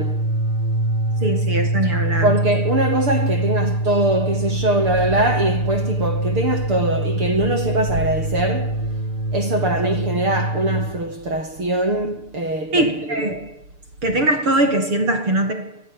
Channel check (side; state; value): left; late; 6.7 ms